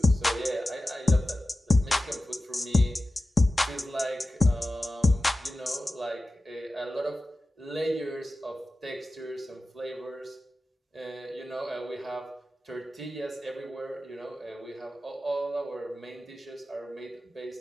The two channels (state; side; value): normal; both; correlation 0.94